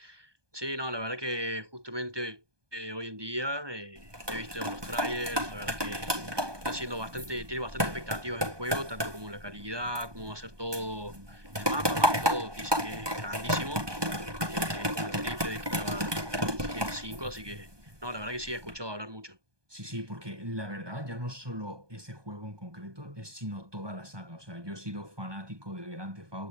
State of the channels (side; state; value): left; late; 1.2 ms